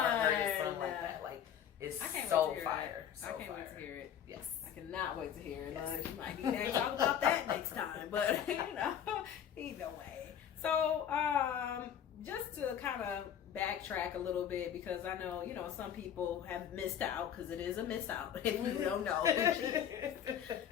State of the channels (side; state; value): right; quieter; 9.2 dB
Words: heard a song like that. Like, it's so fire. I can't wait to hear it. Yes. I cannot wait to hear it. Yes. You might need to talk about that next time. But, you know, either way. So, just to kind of backtrack a little bit, because I know, you know, some people have missed out, because it is a miss out if you don't know who she is.